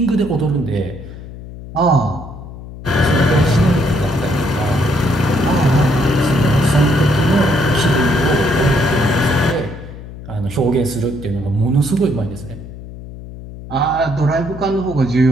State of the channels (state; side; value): noise; left; hum, 14 dB below the sound